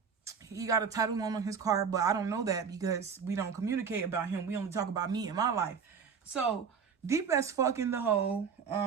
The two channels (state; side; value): quieter; left; 6.4 dB